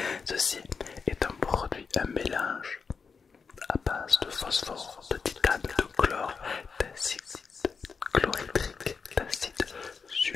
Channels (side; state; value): right; quieter; 5.4 dB